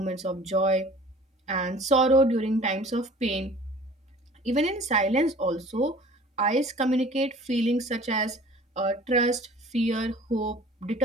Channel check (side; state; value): both; normal; correlation 0.47